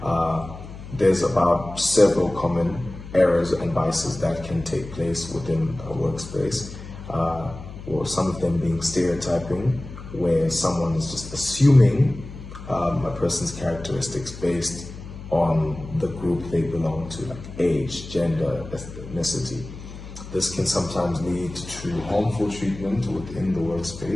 There's about several common errors and biases that can take place within a workspace. Or some of them being stereotyping, where someone is just assuming a person's characteristics based on the group they belong to, like age, gender, ethnicity. This can sometimes lead to harmful treatment within the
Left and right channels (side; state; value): left; noise; hum, 13 dB below the sound